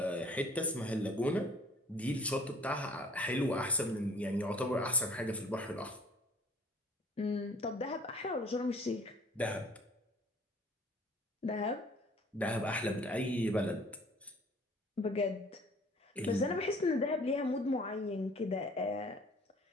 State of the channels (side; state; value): both; normal; correlation 0.53